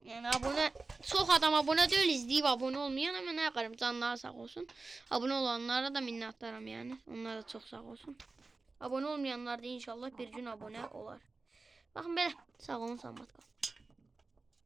Yəni abunə, çox adam abunə deyil, izləyib abunə olmayan, amma nə qarım, canları sağ olsun. Abunə olanlara da minnətdaram yəni. Onlar da çox sağ olsun. Abunə olmayanlar da inşallah bir gün abunə olar. Baxın belə, sağ olun, salamat qalın.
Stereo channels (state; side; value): quieter; left; 3.7 dB